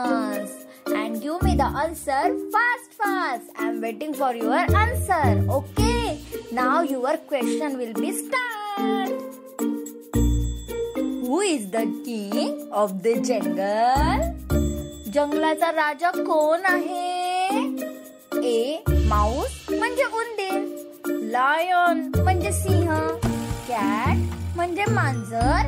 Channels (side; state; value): both; identical; correlation 1.00